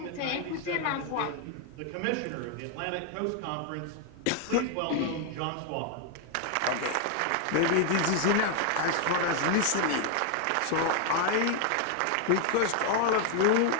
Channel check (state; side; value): different; both; correlation 0.00